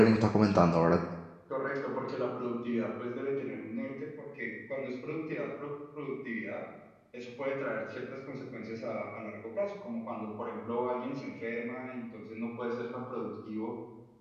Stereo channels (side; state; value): both; identical; correlation 1.00